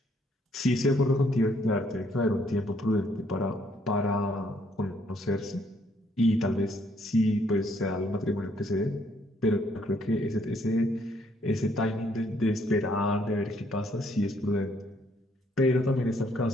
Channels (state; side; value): normal; both; correlation 0.68